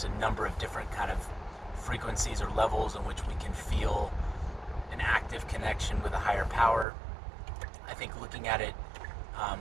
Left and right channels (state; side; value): drops out; left; at 6.9 s